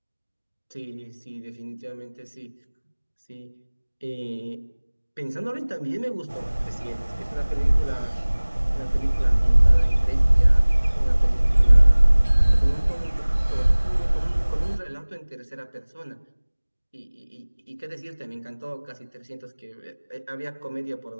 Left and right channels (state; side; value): inverted; both; correlation -1.00